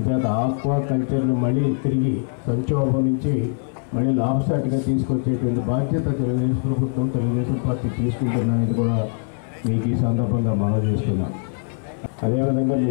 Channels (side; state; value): right; silent; 64 dB below the other